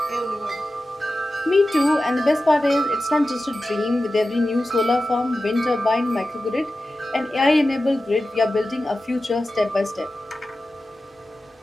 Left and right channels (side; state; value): both; normal; correlation 0.94